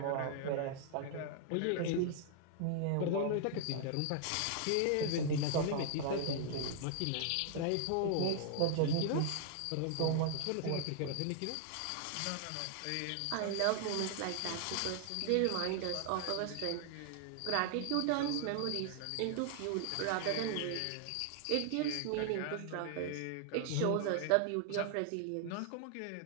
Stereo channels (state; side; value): different; both; correlation 0.00